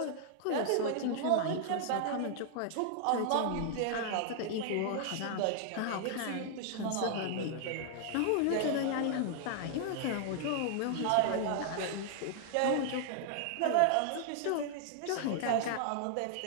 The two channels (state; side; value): different; both; correlation -0.01